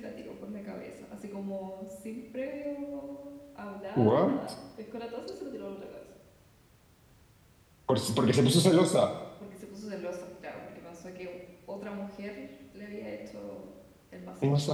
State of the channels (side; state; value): both; identical; correlation 1.00